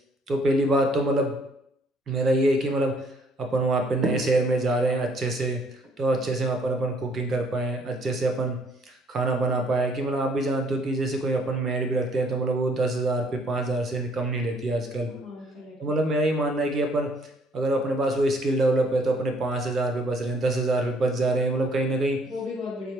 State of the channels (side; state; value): both; normal; correlation 0.63